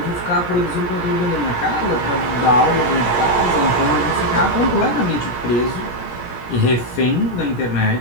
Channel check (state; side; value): late; right; 17 ms